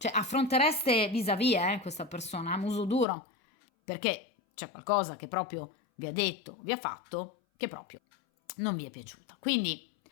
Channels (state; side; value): drops out; right; at 3.1 s